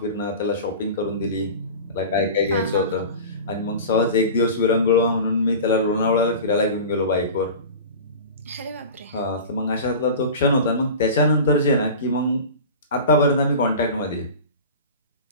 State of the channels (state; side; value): inverted; both; correlation -0.34